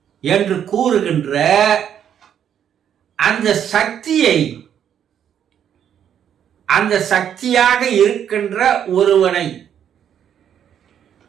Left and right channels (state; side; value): quieter; left; 9.2 dB